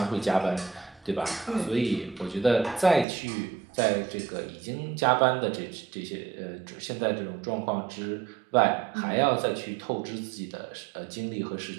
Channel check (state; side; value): drops out; left; at 3.1 s